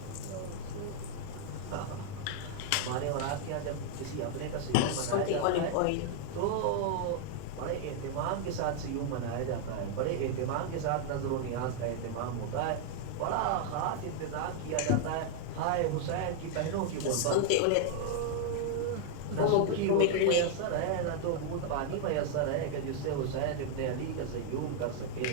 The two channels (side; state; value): both; different; correlation 0.00